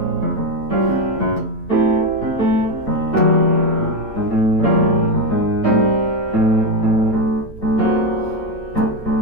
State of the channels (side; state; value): right; late; 8.8 ms